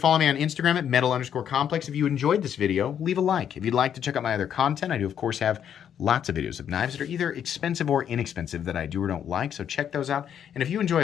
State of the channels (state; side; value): quieter; right; 9.0 dB